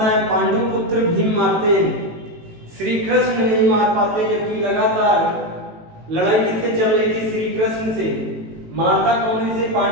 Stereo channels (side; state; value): left; late; 18 ms